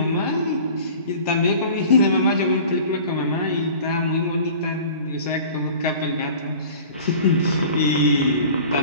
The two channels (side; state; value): both; inverted; correlation -0.43